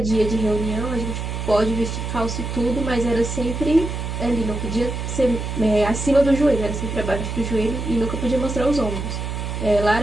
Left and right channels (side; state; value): right; noise; hum, 4 dB below the sound